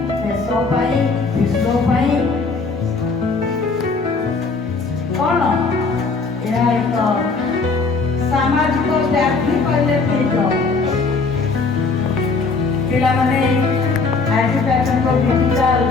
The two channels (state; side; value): quieter; right; 4.2 dB